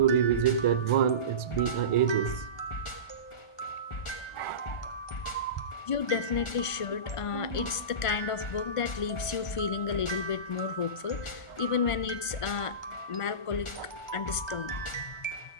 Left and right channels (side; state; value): right; late; 1.5 ms